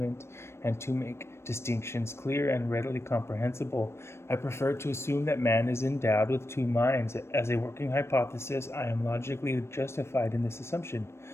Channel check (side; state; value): right; late; 0.13 ms